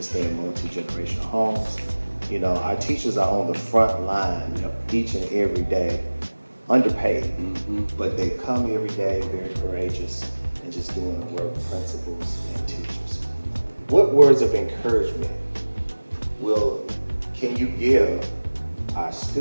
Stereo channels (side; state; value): both; inverted; correlation -1.00